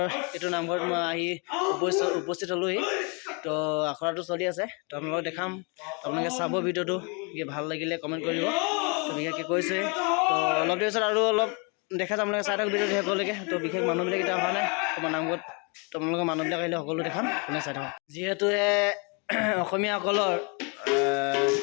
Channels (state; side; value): quieter; right; 33.2 dB